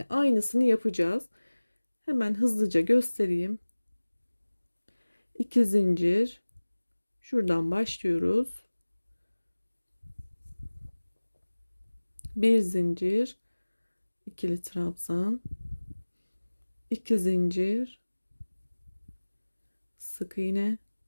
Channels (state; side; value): inverted; both; correlation -1.00